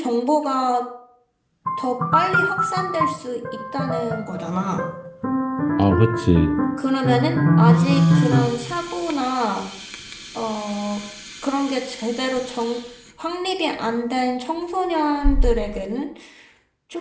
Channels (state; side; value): identical; both; correlation 1.00